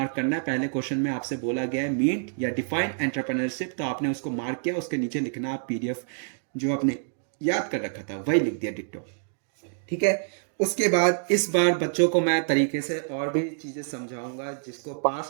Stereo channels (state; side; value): silent; left; digital silence